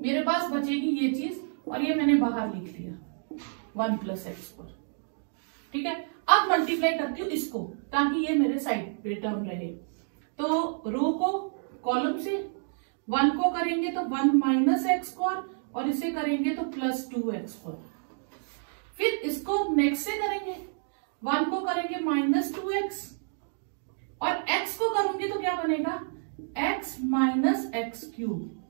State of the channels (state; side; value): silent; left; digital silence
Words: पास बचेगी ये चीज, और ये मैंने बाहर लिख लिया 1 + x², ठीक है। अब मल्टीप्लाई करती हूँ इसको, ताकि ये मेरे साइड पे टर्म रहे। तो रो को कॉलम से 1 को करेंगे तो 1 - x², और इसे करेंगे तो +2x²। फिर इसको नेक्स्ट से करेंगे, 1 को करेंगे -2x, और x को करूंगी तो क्या बनेगा x - x³,